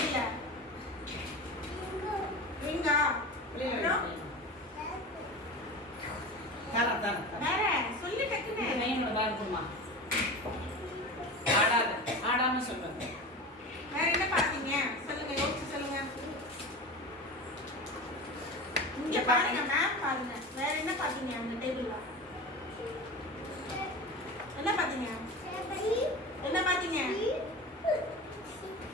ரிங்கா வேற சொல்லு டக்குன்னு ஆடாம சொல்லுங்க. வேற என்ன பாத்தீங்க சொல்லுங்க யோசிச்சு சொல்லுங்க இங்க பாருங்க மேம் பாருங்க வேற என்ன பாத்தீங்க அந்த டேபிள்ல என்ன பாத்தீங்க என்ன பாத்தீங்க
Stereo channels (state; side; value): normal; both; correlation 0.30